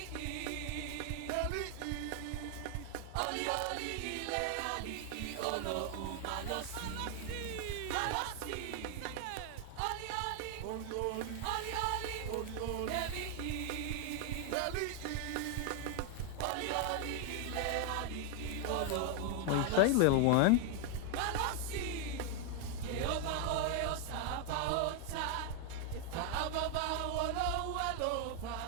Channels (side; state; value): both; different; correlation 0.00